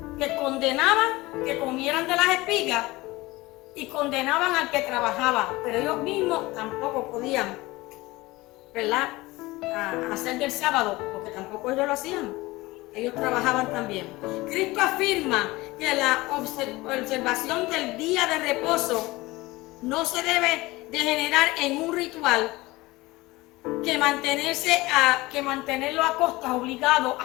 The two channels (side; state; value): right; quieter; 20.5 dB